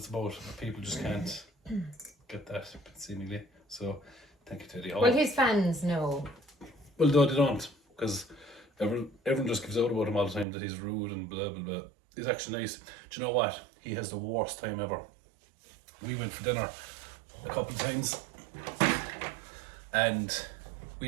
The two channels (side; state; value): left; drops out; at 10.5 s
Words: about. People just can't get that seemingly. So thank you to Eddie Hall. Well, his fans know. Well, no, they don't, because everyone just gives out about him all the time that he's rude and blah blah blah. He's actually nice. Do you know what? He has the worst time ever. We went for dinner a couple of times, and